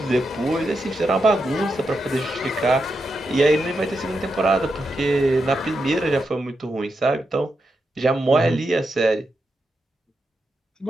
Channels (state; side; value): normal; both; correlation 0.86